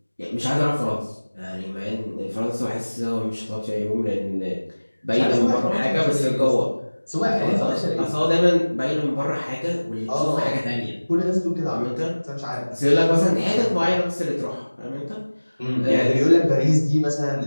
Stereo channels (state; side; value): inverted; both; correlation -1.00